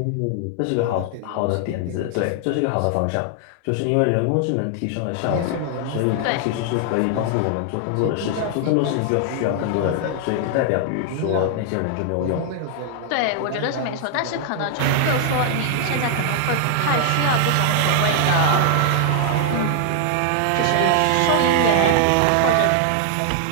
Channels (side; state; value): both; different; correlation 0.00